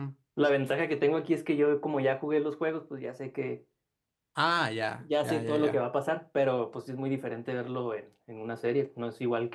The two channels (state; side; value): identical; both; correlation 1.00